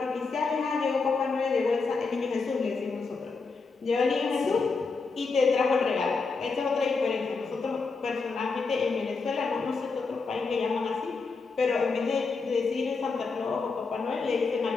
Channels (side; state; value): right; quieter; 4.4 dB